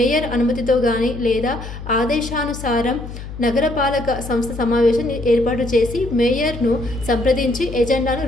అనుమతితో కానీ లేదా ఆదేశానుసారం నగరపాలక సంస్థ సమావేశం ఏర్పాటు చేసి మేయర్ను సంప్రదించి ఎజెండాను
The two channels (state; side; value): noise; left; hum, 11 dB below the sound